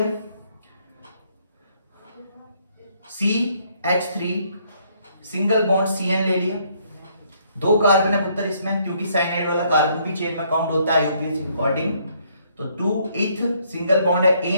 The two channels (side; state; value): both; inverted; correlation -0.68